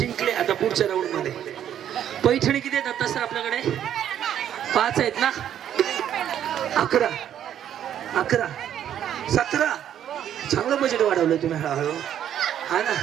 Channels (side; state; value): left; quieter; 10.2 dB